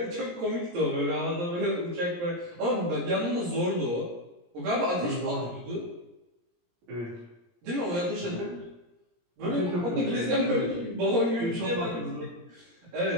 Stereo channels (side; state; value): left; late; 17 ms